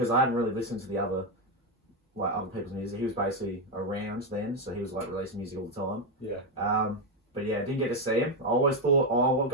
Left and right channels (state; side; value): normal; both; correlation 0.06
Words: I hadn't really listened to the other people's music. He was basically around then, so he was like releasing music all the time. Yeah. But yeah, didn't get to see him. I always thought, oh, I'll